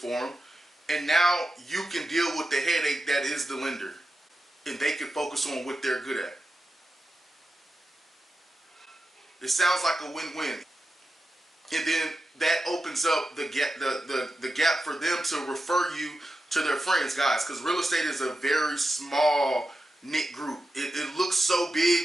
them, and now you can deal with the headache that is the lender, and they can focus on what they're good at. It sounds like a win-win. And then that opens up the gap for them to refer you to their friends, guys, because real estate is a very small knit group. It looks so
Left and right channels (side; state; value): both; normal; correlation 0.90